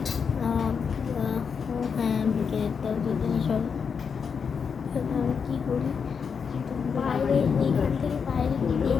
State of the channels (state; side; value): quieter; right; 6.2 dB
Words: হ্যাঁ, বিকেলেরটাও দুদিনে সব আমি কী করি, বাইরে এইখান থেকে বাইরে গিয়ে